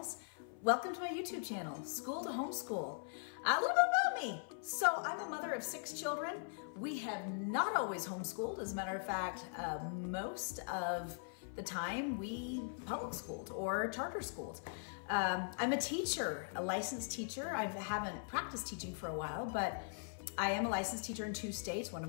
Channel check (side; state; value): right; silent; 51 dB below the other